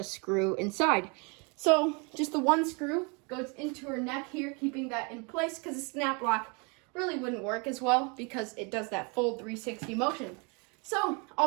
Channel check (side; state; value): left; quieter; 32.4 dB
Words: screw inside. So just the one screw goes into her neck here, keeping that in place because the snap lock really wouldn't work as well because it does that full 360 motion. So